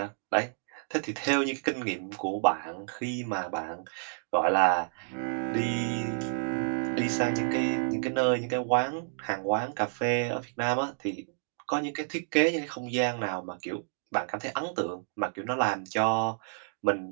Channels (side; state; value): left; silent; digital silence